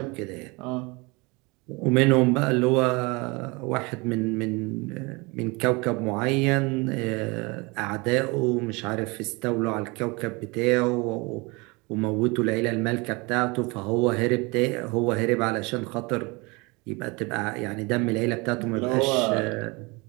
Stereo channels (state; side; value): quieter; left; 26.8 dB